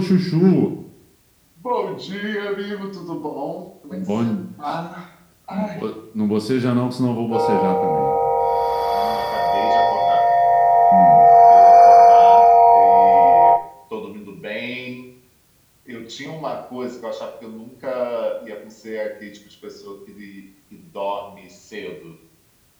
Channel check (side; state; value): both; identical; correlation 1.00